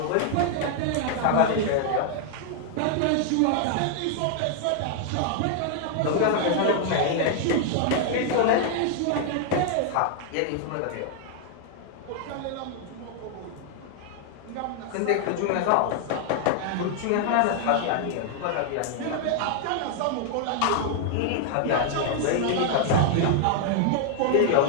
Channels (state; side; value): different; both; correlation 0.00